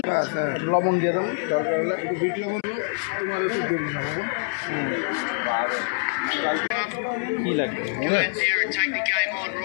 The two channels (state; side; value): silent; right; 62 dB below the other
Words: লবণ দিয়ে দেবো দরকার হলে একটু বিট লবণ দেবো তোমার একটু দিয়ে দিলাম কি লাগবে